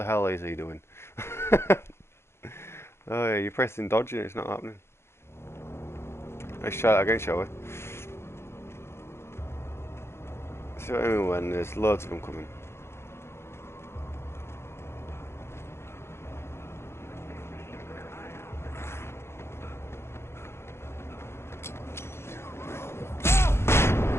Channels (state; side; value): late; right; 0.12 ms